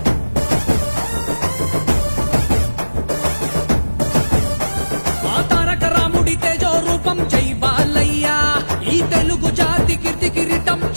తారక రాముడి తేజో రూపం జై బాలయ్య, ఈ తెలుగు జాతి కీర్తి కిరీటం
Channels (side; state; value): both; inverted; correlation -1.00